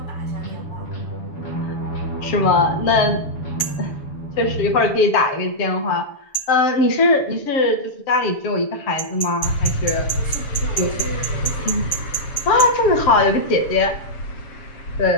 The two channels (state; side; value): late; right; 7.0 ms